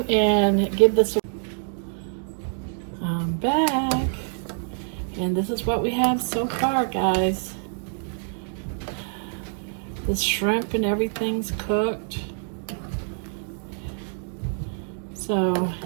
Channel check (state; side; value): silent; left; 59 dB below the other